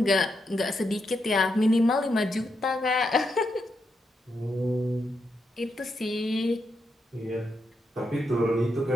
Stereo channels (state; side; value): normal; both; correlation 0.83